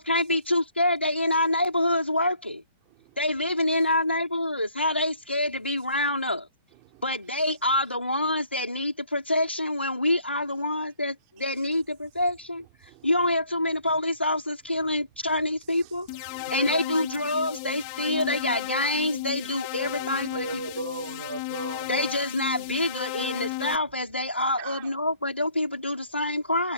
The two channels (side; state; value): both; inverted; correlation -0.60